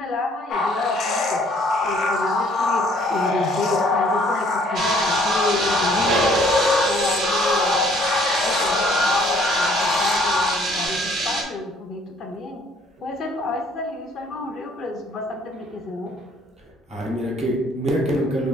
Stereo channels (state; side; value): normal; both; correlation 0.60